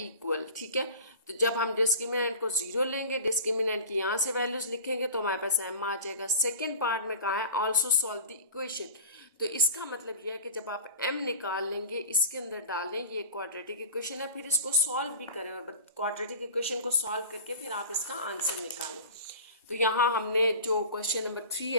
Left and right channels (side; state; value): both; inverted; correlation -0.37